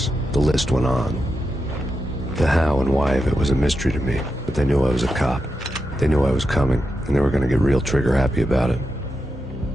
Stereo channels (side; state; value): both; normal; correlation 0.87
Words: The list went on. The how and why of it was a mystery to me, but they knew I was a cop. They knew I was coming, and they were going to get real trigger happy about it.